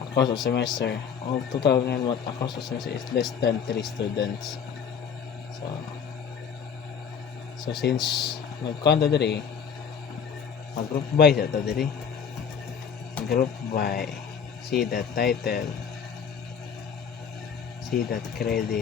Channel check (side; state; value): right; quieter; 7.1 dB